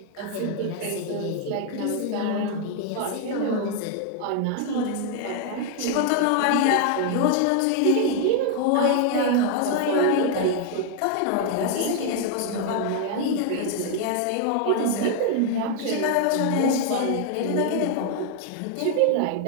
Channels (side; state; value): both; different; correlation 0.00